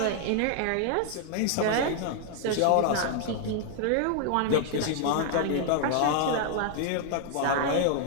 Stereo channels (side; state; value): both; different; correlation 0.00